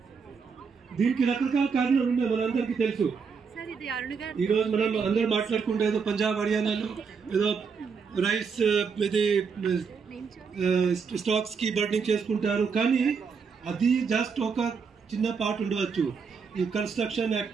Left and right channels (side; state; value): left; quieter; 5.7 dB